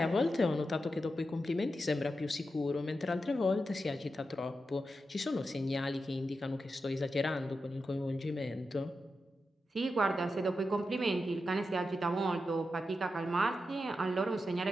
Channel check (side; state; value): both; normal; correlation 0.89